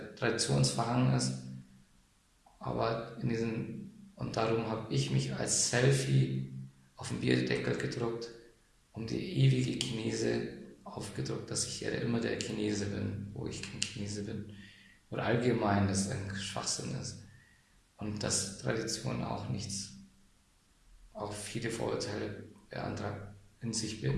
traditionsverhangen ist. Aber und darum habe ich mich als Selfie auf den Bierdeckel gedruckt, um die ewige Chinese aufgedruckt, dass ich ja immer der Chinese bin, wo ich kein Chinese bin. Oder allgemein, dass es ein Schwachsinn ist. Und dass Tradition auch viele Vorurteile in sich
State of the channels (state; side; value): identical; both; correlation 1.00